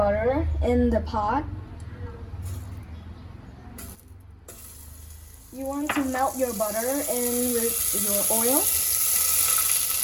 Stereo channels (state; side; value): identical; both; correlation 1.00